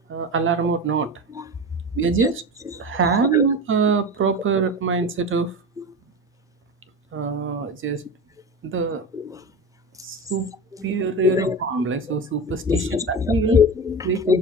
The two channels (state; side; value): normal; both; correlation 0.27